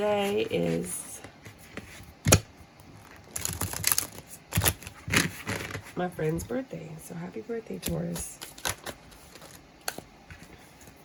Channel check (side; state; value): both; identical; correlation 1.00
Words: is my friend's birthday. So happy birthday, Taurus.